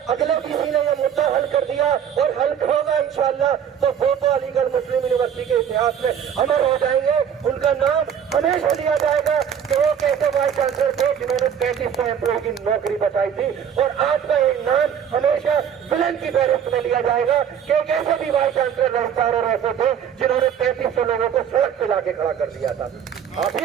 अगले वीसी ने ये मुद्दा हल कर दिया और हल होगा इंशाअल्लाह, तो वो तो अलीगढ़ मुस्लिम यूनिवर्सिटी के इतिहास में अमर हो जाएंगे। उनका नाम हमेशा लिया जाएगा कि वो कैसे वाइस चांसलर थे जिन्होंने 3500 एम्प्लॉय की नौकरी बचाई थी। और आज का एक नाम हमेशा विलन की फहरिस्त में लिया जाएगा कि एक ऐसे भी वाइस चांसलर रजिस्ट्रार और ऐसे थे जिन्होंने 3500 लोगों को सड़क पे लाके खड़ा कर दिया था। आप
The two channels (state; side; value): quieter; left; 8.4 dB